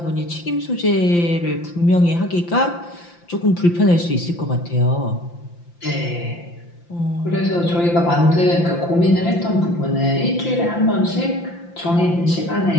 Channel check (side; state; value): right; late; 5.8 ms